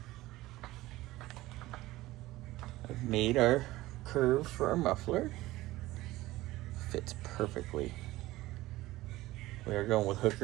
I've made our curve for our muffler. Fits perfectly. We are going with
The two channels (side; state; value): left; quieter; 17.7 dB